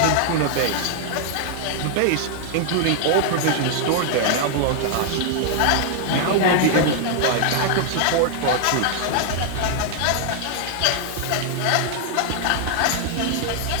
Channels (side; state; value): both; different; correlation 0.00